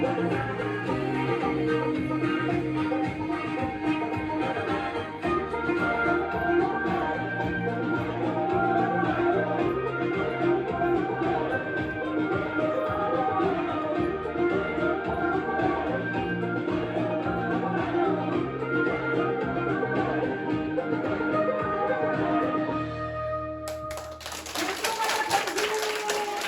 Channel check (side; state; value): both; identical; correlation 1.00